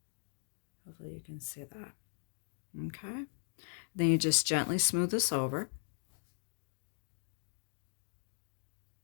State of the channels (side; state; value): right; silent; digital silence